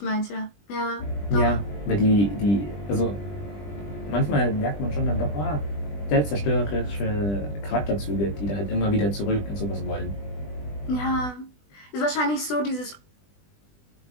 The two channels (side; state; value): right; late; 20 ms